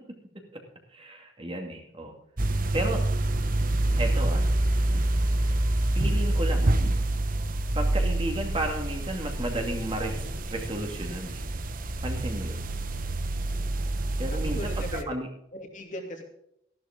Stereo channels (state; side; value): normal; both; correlation 0.88